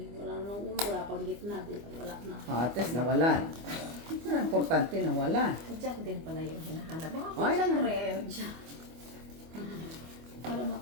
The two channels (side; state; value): left; late; 25 ms